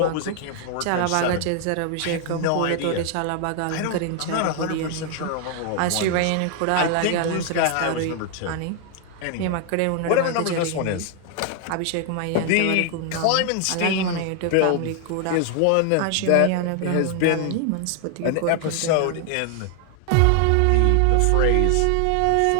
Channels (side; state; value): both; different; correlation 0.00